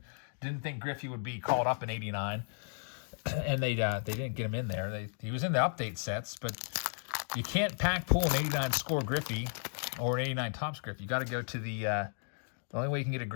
Didn't think Griffey would be called up in '89. And they didn't get him in there. He was in the update sets, but you can't pack pull an 89 score Griffey or an 89 tops Griffey. You got to go to the only way you can get a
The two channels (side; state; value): right; silent; 55 dB below the other